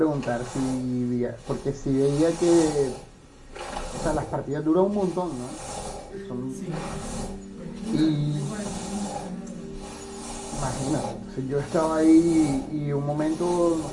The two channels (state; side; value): identical; both; correlation 1.00